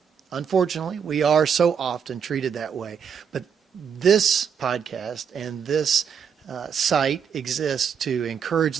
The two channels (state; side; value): quieter; left; 7.2 dB